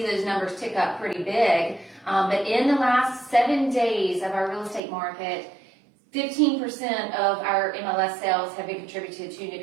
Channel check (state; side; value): drops out; left; at 4.8 s